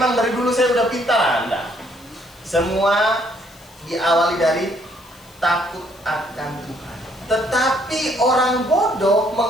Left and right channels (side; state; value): left; noise; hiss, 25 dB below the sound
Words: dari dulu saya udah pintar. Anda. Semua diawali dari takut akan Tuhan. Tetapi orang bodoh